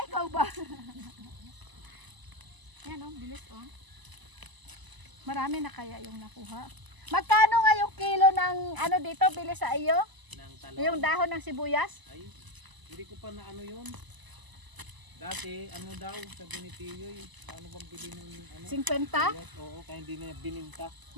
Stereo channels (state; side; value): late; left; 1.0 ms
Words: ikaw ba? Yan oh, bilis oh. Marami na kaya yung nakuha. Magkano nga yung kilo ng ano dito, bilis sa iyo? Ng talong. Yung dahon ng sibuyas? Ay, hindi ko pa na ano yun. Dati, ano daw, sabi ni Tiyoy, ano bang bili ng ano? 50? Yes, oo, kaya hindi na bininta.